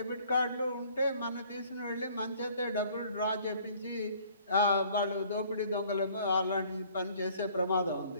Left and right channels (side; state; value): both; inverted; correlation -0.56